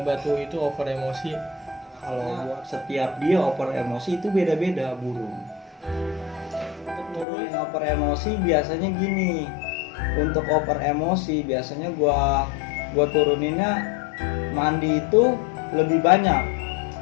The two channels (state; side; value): drops out; right; at 7.2 s